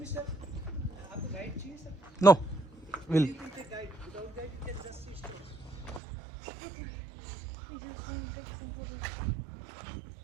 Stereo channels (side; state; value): left; drops out; at 6.0 s